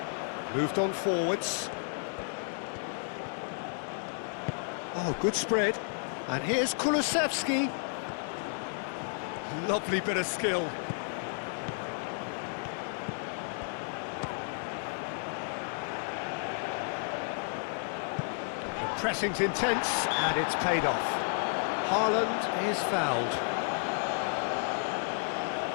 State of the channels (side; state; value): right; silent; 56 dB below the other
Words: Moved on forwards. Oh, good spread. And here's Kulusevski. Lovely bit of skill. The pressing's intense, and it's paid off. Haaland is fouled.